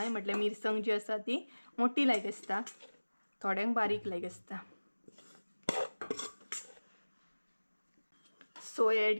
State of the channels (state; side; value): inverted; both; correlation -1.00